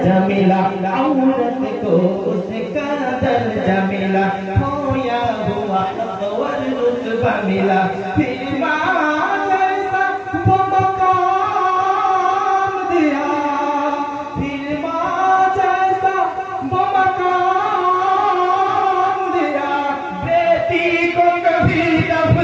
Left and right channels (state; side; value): identical; both; correlation 1.00